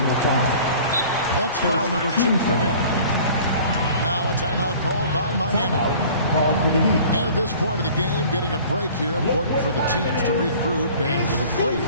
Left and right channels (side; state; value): both; inverted; correlation -0.47